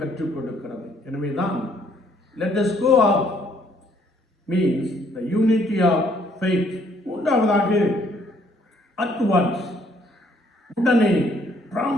கற்றுக் கொடுக்கிறது. எனவேதான் let us go up means the unity of faith. மூன்றாவதாக at once, உடனே,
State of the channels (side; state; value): both; normal; correlation 0.66